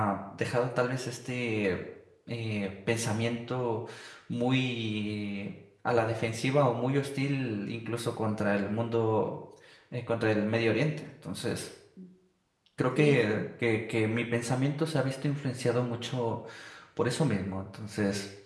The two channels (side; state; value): both; identical; correlation 1.00